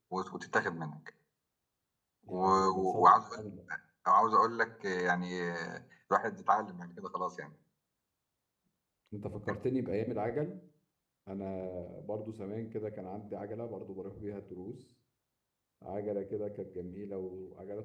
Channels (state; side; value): identical; both; correlation 1.00